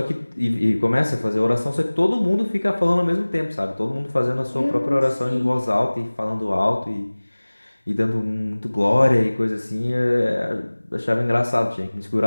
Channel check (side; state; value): both; inverted; correlation -1.00